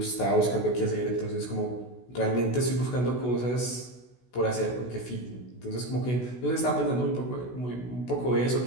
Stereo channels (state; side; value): late; right; 16 ms